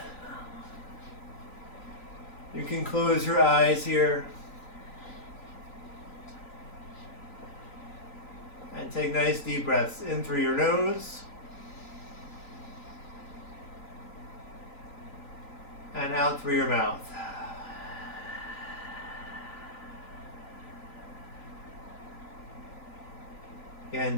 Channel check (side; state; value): right; late; 3.9 ms